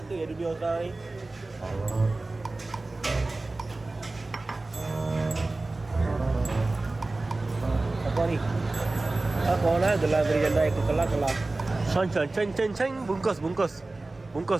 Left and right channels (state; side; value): quieter; left; 3.1 dB